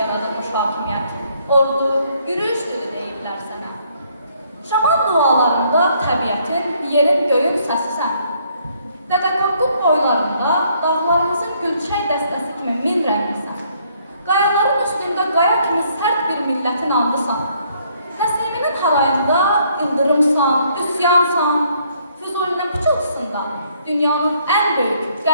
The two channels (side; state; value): both; inverted; correlation -0.67